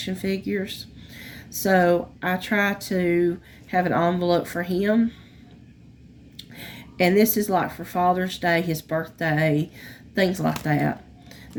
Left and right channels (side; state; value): both; identical; correlation 1.00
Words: figures. So I try to have an envelope for him. And this is like for Father's Day, his birthday, things like that.